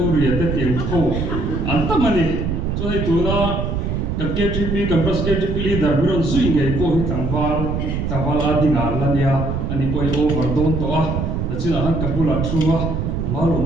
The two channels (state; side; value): noise; right; rumble, 1 dB below the sound